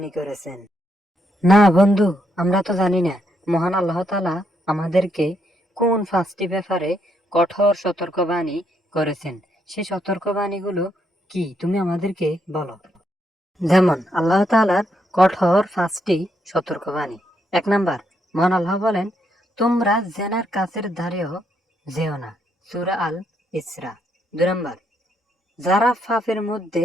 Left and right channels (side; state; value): both; normal; correlation 0.77